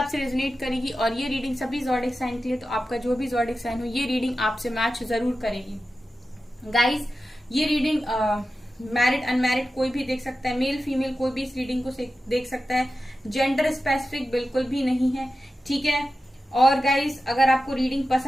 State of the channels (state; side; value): normal; both; correlation 0.92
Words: रेजोनेट करेगी। और ये रीडिंग सभी ज़ोडिक साइन के लिए, तो आपका जो भी ज़ोडिक साइन हो ये रीडिंग आपसे मैच जरूर करेगी। गाइस, ये रीडिंग मैरिड अनमैरिड कोई भी देख सकता है, मेल फीमेल कोई भी इस रीडिंग को देख सकता है। जेंडर स्पेसिफिक बिल्कुल भी नहीं है, ठीक है। और गाइस, अगर आपको रीडिंग